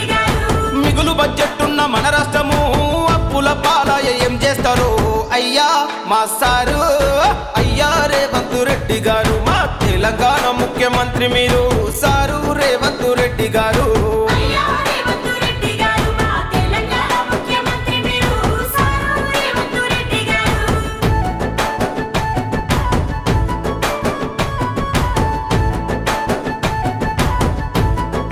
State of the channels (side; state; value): both; identical; correlation 1.00